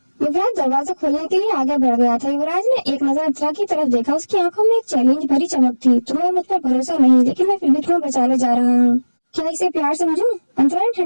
युवराज दरवाजा खोलने के लिए आगे बढ़ गया था। युवराज ने एक नजर अंतरा की तरफ देखा, उसकी आंखों में एक चैलेंज भरी चमक थी। तुम्हें मुझ पर भरोसा नहीं, लेकिन मैं फिर भी तुम्हें बचाने जा रहा हूँ। क्या इसे प्यार समझूं? अंतरा ने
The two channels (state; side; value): inverted; both; correlation -1.00